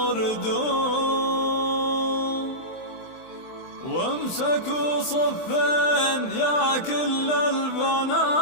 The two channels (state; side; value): late; right; 23 ms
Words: وامسكوا صفين يا كل البنات.